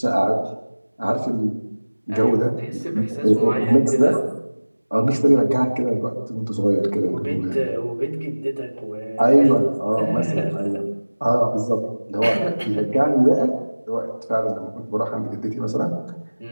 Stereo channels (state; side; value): inverted; both; correlation -1.00